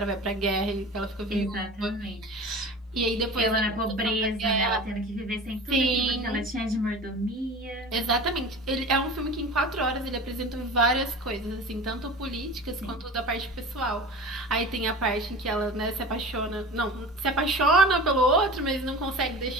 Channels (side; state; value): both; normal; correlation 0.36